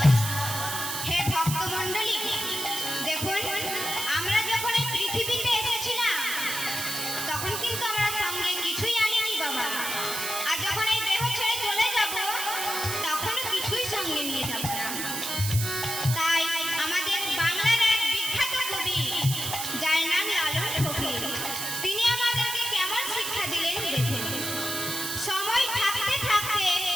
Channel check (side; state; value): right; noise; hiss, 3 dB below the sound